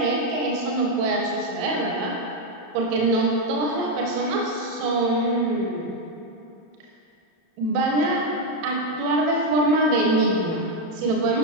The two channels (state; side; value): late; left; 31 ms